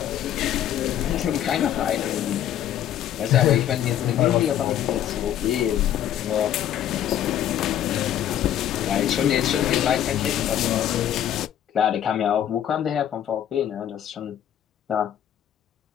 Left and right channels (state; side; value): quieter; right; 10.9 dB